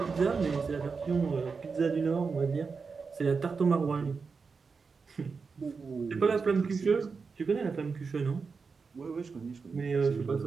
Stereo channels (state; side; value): quieter; left; 5.0 dB